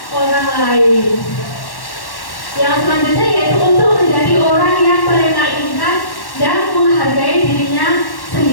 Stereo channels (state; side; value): late; right; 1.1 ms